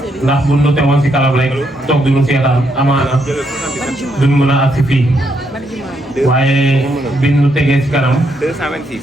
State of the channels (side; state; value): both; normal; correlation 0.77